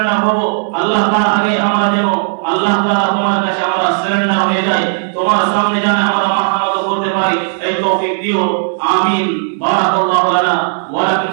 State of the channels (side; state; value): left; silent; digital silence